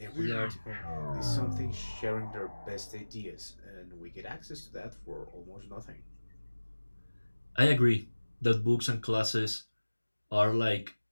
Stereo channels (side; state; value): both; inverted; correlation -1.00